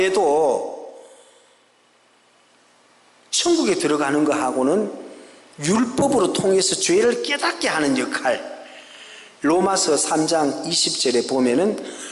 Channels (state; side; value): identical; both; correlation 1.00